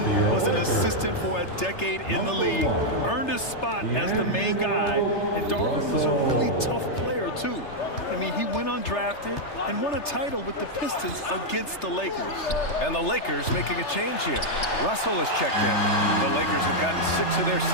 was an assistant for a decade in the league, earned his spot as the main guy, and Darvin was a really tough player, too. I mean, he went undrafted and won a title with the Pistons against the Lakers. And the Lakers making a change here. Russell has checked in. The Lakers have gotten 6 of their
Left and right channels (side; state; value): right; late; 3.3 ms